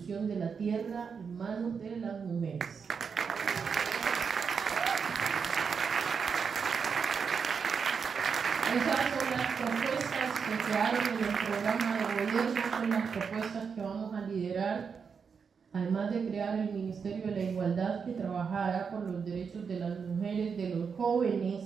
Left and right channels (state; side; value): quieter; left; 6.0 dB